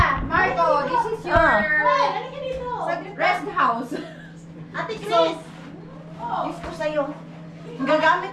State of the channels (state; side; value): identical; both; correlation 1.00